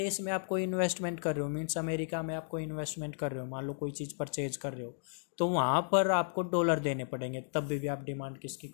में आप कोई इन्वेस्टमेंट कर रहे हो, मीन्स अमेरिका में आप कोई इन्वेस्टमेंट कर रहे हो, मान लो कोई चीज़ परचेज कर रहे हो, तो वहाँ पर आपको डॉलर देने पड़ेंगे, तब भी आप डिमांड किसकी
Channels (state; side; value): silent; right; digital silence